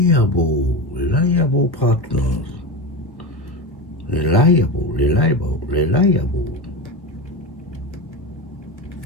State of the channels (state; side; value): late; right; 1.2 ms